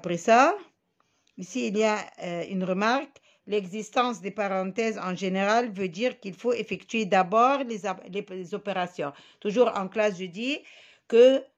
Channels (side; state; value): both; identical; correlation 1.00